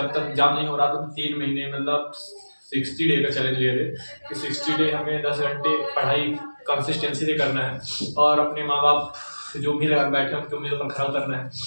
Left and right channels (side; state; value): both; inverted; correlation -1.00